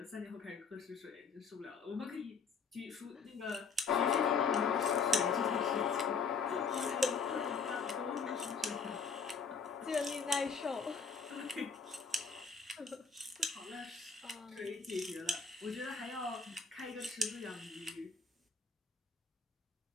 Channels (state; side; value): quieter; right; 5.3 dB